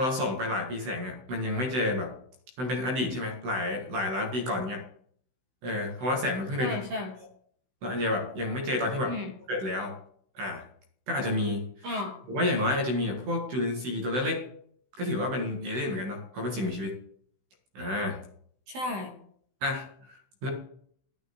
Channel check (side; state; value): left; late; 16 ms